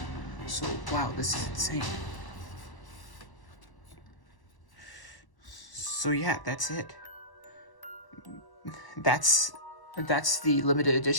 So wow, this is insane. So yeah, that's it. That's the limited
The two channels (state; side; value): late; right; 1.0 ms